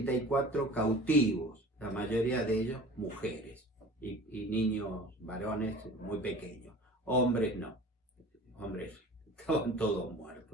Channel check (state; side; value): normal; both; correlation 0.42